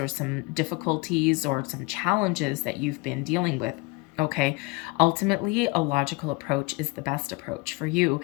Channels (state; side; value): quieter; right; 24.9 dB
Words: some difficulties or some challenges that you've been dealing with. Okay, ultimately, a logical approach is the best approach for you.